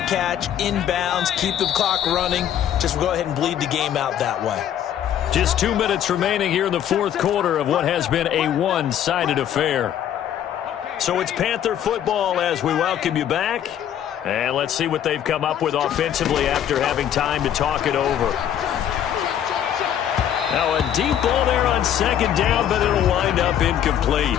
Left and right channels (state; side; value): quieter; right; 10.2 dB